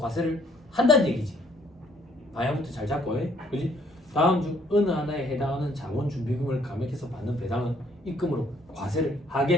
한다는 얘기지. 방향부터 잘 잡고, 그지? 다음 중 어느 하나에 해당하는 자본준비금을 감액해서 받는 배당은 입금으로 과세를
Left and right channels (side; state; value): both; normal; correlation 0.64